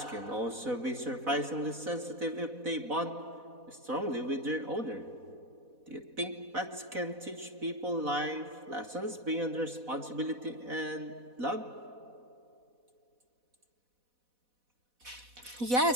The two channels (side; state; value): left; late; 4.1 ms